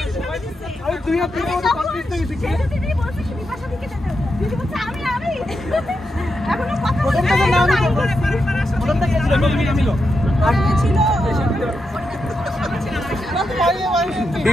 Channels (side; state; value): both; normal; correlation 0.86